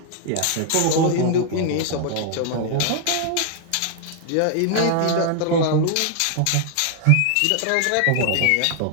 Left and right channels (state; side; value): different; both; correlation 0.00